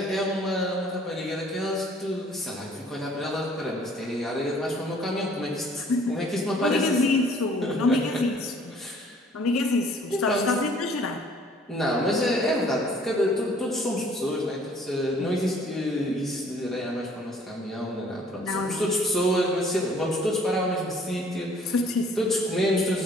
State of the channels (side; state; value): both; normal; correlation 0.57